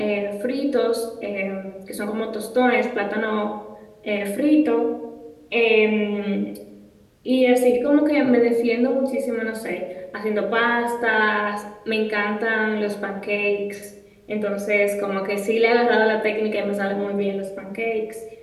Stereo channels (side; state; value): both; identical; correlation 1.00